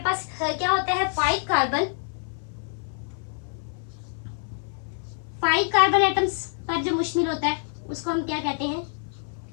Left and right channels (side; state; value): right; silent; 57 dB below the other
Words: पास क्या होता है, 5 कार्बन एटम्स पर जो मुश्तमिल होता है उसको हम क्या कहते हैं,